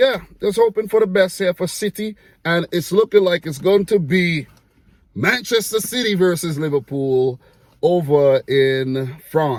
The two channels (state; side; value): identical; both; correlation 1.00